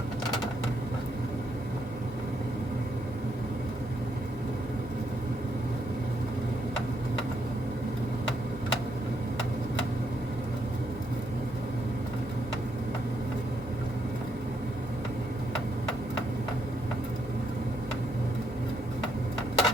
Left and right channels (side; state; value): both; normal; correlation 0.76